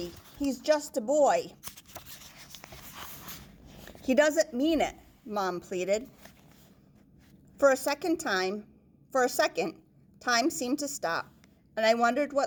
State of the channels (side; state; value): both; identical; correlation 1.00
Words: he's just a boy." "He doesn't mean it," Mom pleaded. For a second, time seemed to stop, and I wondered